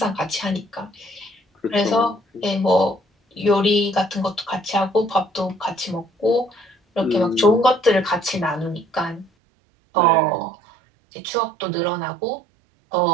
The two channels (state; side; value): drops out; left; at 9.3 s